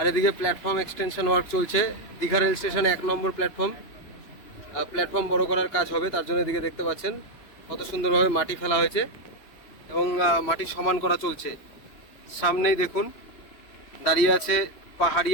এদিকে প্ল্যাটফর্ম এক্সটেনশন ওয়ার্ক চলছে দীঘা রেল স্টেশনে 1 নম্বর প্ল্যাটফর্ম বড় করার কাজ হবে, তার জন্য এদিকে দেখতে পাচ্ছেন কত সুন্দরভাবে মাটি ফেলা হয়েছে এবং মাটি সমান করা চলছে। সামনেই দেখুন দাঁড়িয়ে আছে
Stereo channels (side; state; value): right; late; 2.9 ms